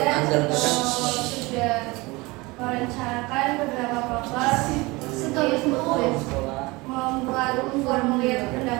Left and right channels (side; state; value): left; quieter; 23.3 dB